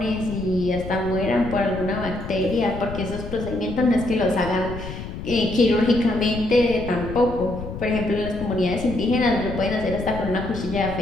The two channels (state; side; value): noise; left; rumble, 9 dB below the sound